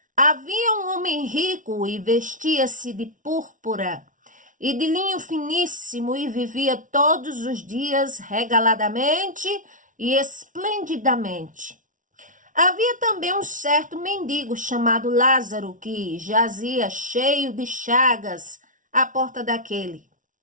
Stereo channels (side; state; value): left; late; 0.38 ms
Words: havia um homem rico e vestia-se de púrpura e de linho finíssimo e vivia todos os dias regaladamente e esplendidamente. Havia também um certo mendigo chamado Lázaro que jazia cheio de chagas à porta daquele.